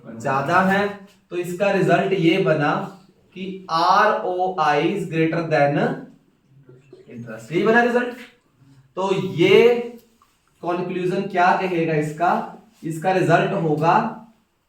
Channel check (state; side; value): identical; both; correlation 1.00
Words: ज्यादा है। तो इसका रिजल्ट ये बना कि ROI is greater than interest, यही बना रिजल्ट। तो ये कंक्लूजन क्या कहेगा इसका? इसका रिजल्ट होगा